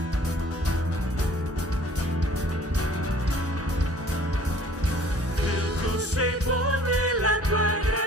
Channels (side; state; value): both; normal; correlation 0.52